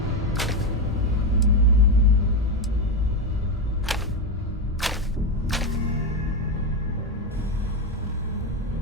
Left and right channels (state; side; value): normal; both; correlation 0.11